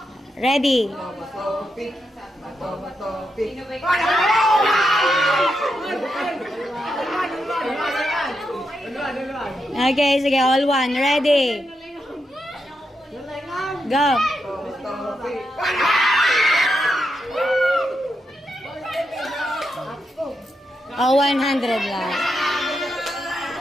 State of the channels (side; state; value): both; normal; correlation 0.84